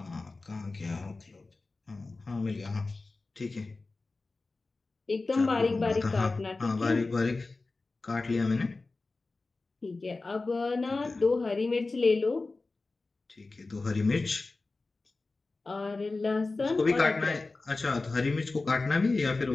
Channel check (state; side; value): quieter; right; 3.5 dB